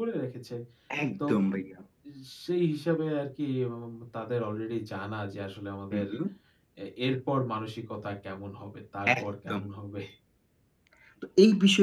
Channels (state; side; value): identical; both; correlation 1.00